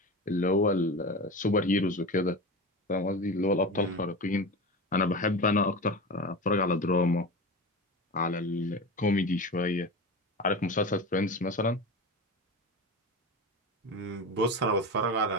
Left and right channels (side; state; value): both; normal; correlation 0.27